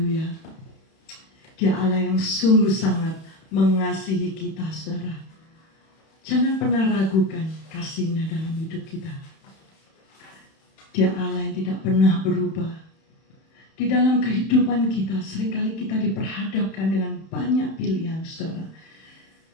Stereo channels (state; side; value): late; right; 31 ms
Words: Dia Allah yang sungguh sangat mengasihi kita, saudara. Jangan pernah ragukan kasih-Nya dalam hidup kita. Dia Allah yang tidak pernah berubah. Di dalam kehidupan kita, seringkali kita diperhadapkan dengan banyak pilihan, saudara.